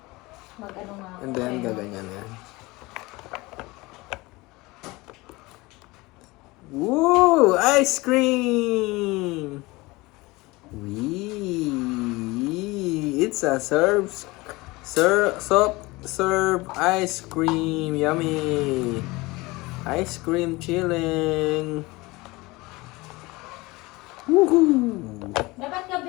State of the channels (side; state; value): right; quieter; 22.3 dB